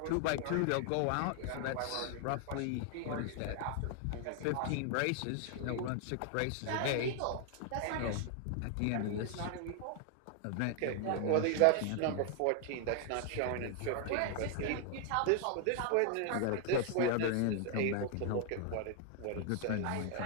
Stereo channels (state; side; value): different; both; correlation 0.00